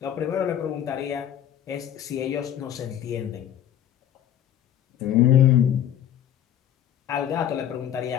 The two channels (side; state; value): right; quieter; 10.5 dB